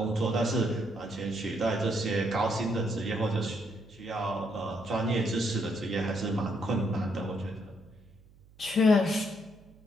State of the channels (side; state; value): right; noise; hum, 26 dB below the sound